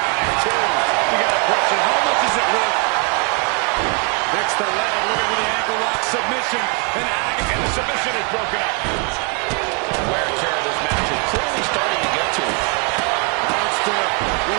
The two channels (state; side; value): quieter; left; 36.4 dB